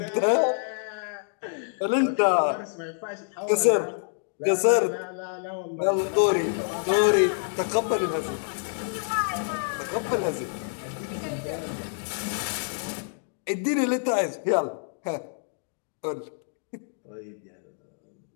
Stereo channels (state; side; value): silent; right; digital silence